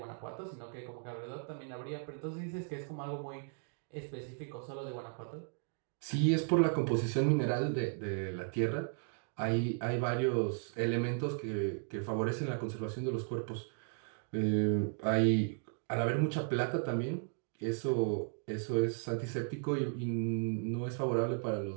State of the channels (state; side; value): silent; left; 54 dB below the other